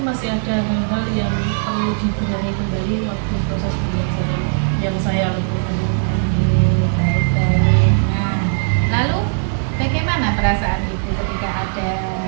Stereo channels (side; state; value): left; silent; digital silence